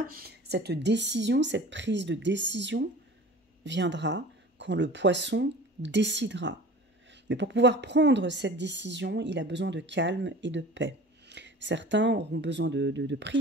cette décision, cette prise de décision viendra quand le poisson décidera. Mais pour pouvoir prendre cette décision, il a besoin de calme et de paix. Certains auront besoin de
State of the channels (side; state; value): both; normal; correlation 0.41